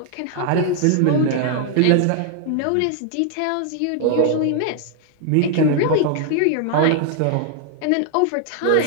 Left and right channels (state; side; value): different; both; correlation 0.00